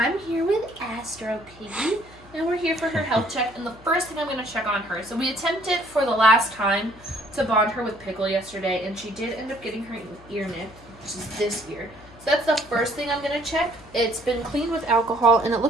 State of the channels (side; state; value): left; noise; hum, 23 dB below the sound